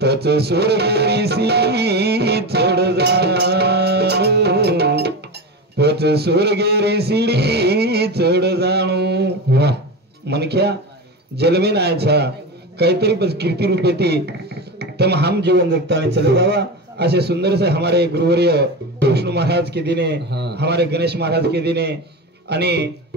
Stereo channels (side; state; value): both; normal; correlation 0.23